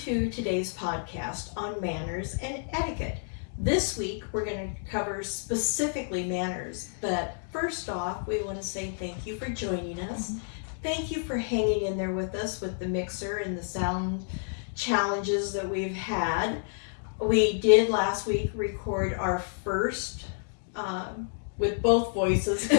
to today's podcast on manners and etiquette. This week we're going to cover specifically manners, but first off we want to say thank you for joining us. Thank you for hanging in there with us with the mixer and the sound challenges that we've had. We did last week record our first with both voices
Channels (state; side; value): silent; right; digital silence